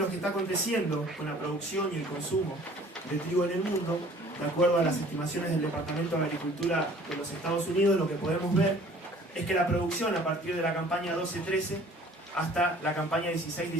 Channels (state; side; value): normal; both; correlation 0.52